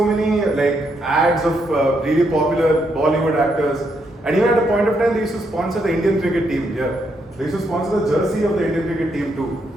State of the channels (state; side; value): normal; both; correlation 0.77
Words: many ads of really popular Bollywood actors, and even at a point of time they used to sponsor the Indian cricket team. Yeah, they used to sponsor the jersey of the Indian cricket team too.